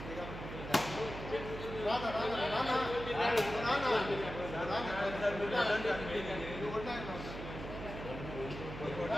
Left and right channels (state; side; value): noise; right; hum, 9 dB below the sound